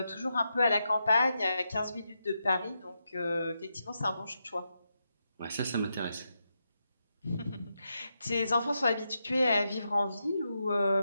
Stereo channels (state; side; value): inverted; both; correlation -0.85